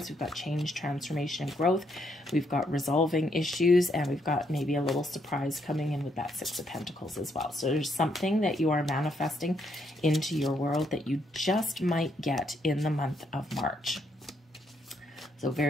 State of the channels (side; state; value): both; normal; correlation 0.75